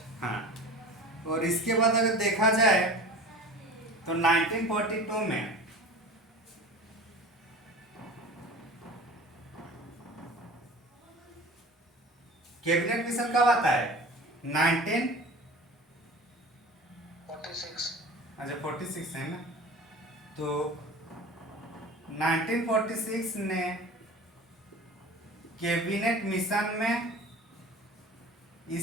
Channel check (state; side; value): normal; both; correlation 0.38